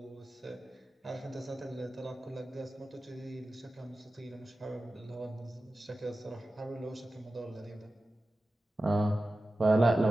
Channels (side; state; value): both; normal; correlation 0.94